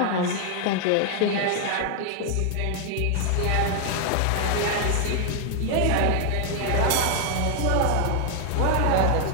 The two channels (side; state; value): both; different; correlation 0.00